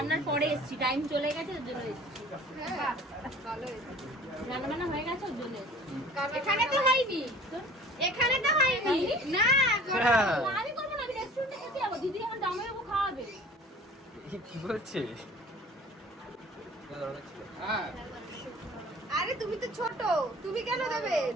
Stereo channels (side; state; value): both; normal; correlation 0.47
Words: পরে এসেছি, টাইম চলে গেছে ওর জন্য এসেছি। হ্যাঁ, ভালো হয়েছে। রান্না বান্না হয়ে গেছে ওর জন্য এসেছি। এখানে তো হয়নি। এখানে তো হয়নি। না, হ্যাঁ। আমি করবো না, আমি রেস্টুরেন্টে খেতে যাবো। দিদি আমার জামাইবাবু খাওয়াবে। কি বলছে? আরে তুমি তো ছোট, তুমি কেন দেবে?